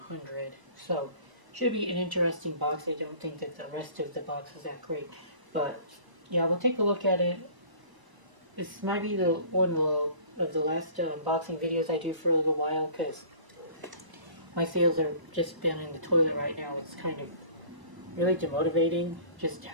100, so should be an interesting box. I don't think that the rest of the box is that great, but yeah, we'll take a look at it. This might be the one of the last unboxing videos I do for a little while, because my sales are just been in the toilet right now. It's kind of really demotivating just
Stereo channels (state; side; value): late; left; 1.0 ms